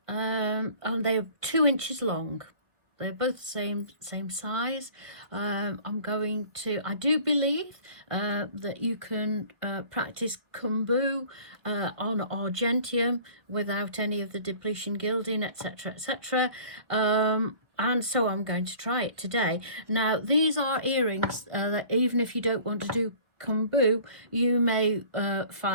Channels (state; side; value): late; left; 1.2 ms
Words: and they're 2 inches long. They're both the same size. I'm going to, I do believe that you can practice Keum Boo on argentium without any of the depletion gilding, etc., etc. And so I'm going to try it today. Now, these are earrings that even if you don't want to do Keum Boo, you may